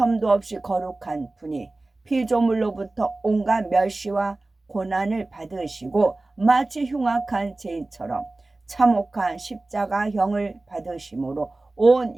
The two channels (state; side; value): quieter; left; 3.0 dB